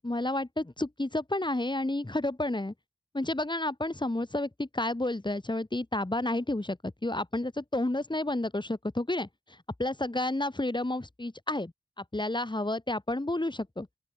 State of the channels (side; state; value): both; normal; correlation 0.71